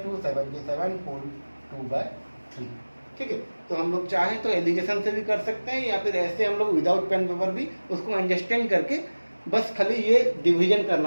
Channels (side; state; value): both; inverted; correlation -1.00